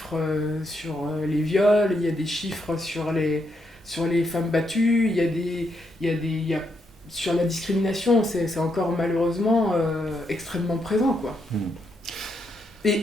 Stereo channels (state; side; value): normal; both; correlation 0.79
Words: sur les viols, il y a des chiffres sur les femmes battues, il y a sur la discrimination, c'est encore malheureusement extrêmement présent, quoi.